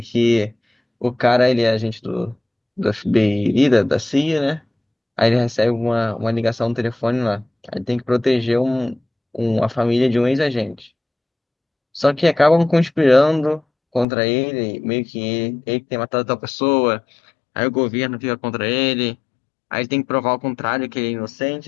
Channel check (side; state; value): right; drops out; at 14.1 s